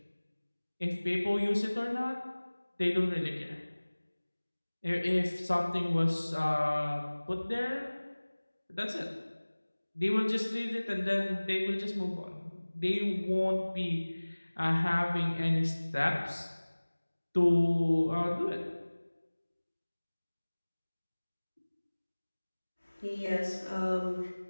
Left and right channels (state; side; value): inverted; both; correlation -1.00